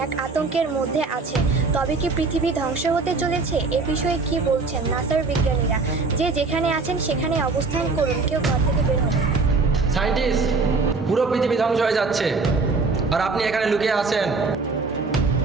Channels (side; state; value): left; quieter; 4.0 dB